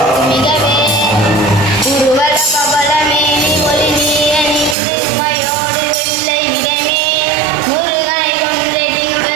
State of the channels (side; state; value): left; drops out; at 4.8 s